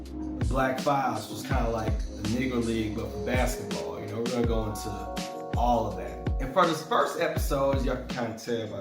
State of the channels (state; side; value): identical; both; correlation 1.00